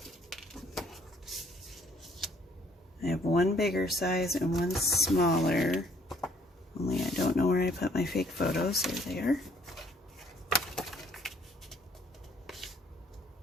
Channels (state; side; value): normal; both; correlation 0.63